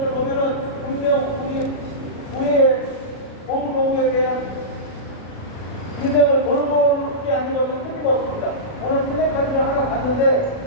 보면은 분명 우리의 고부노구에 대한 인생을 돌보지 않는 것은 틀림없습니다. 오늘 플래카드를 하나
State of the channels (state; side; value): late; right; 37 ms